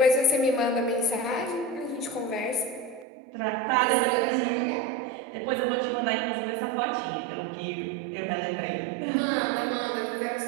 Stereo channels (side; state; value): left; drops out; at 3.1 s